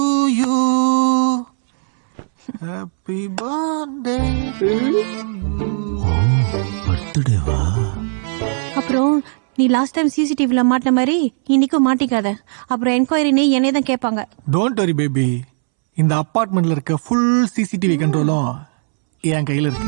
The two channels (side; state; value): left; silent; 68 dB below the other